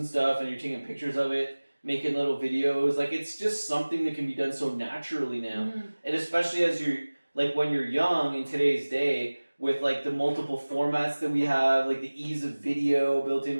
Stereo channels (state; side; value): inverted; both; correlation -1.00